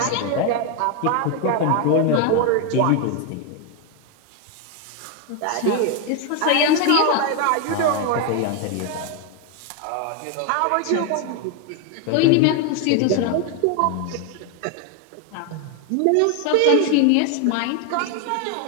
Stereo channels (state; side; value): different; both; correlation 0.01